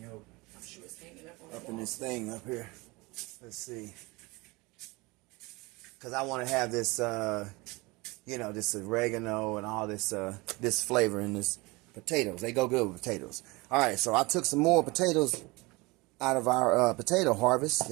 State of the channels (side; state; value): left; quieter; 24.3 dB